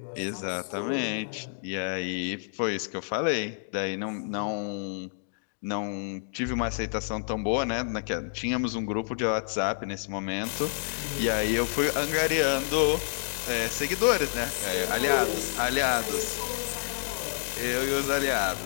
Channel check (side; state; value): right; silent; digital silence